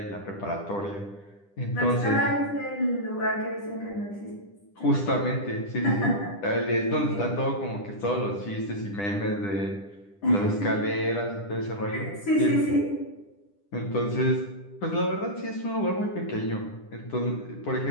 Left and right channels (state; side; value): late; right; 10 ms